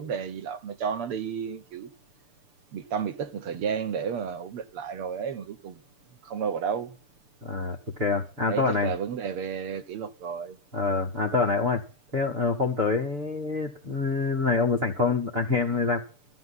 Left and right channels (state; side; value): late; left; 6.8 ms